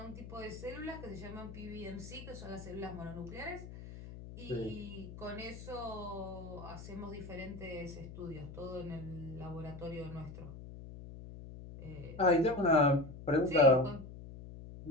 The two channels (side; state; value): left; noise; hum, 12 dB below the sound